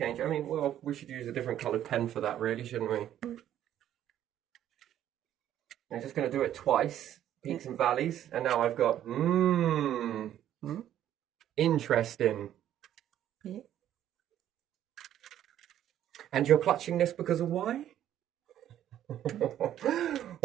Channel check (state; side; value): quieter; left; 11.4 dB